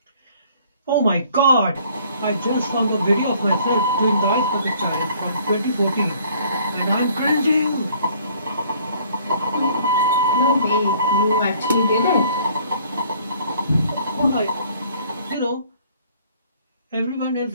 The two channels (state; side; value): inverted; both; correlation -0.58